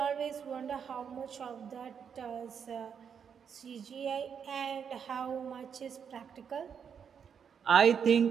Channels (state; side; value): quieter; left; 7.2 dB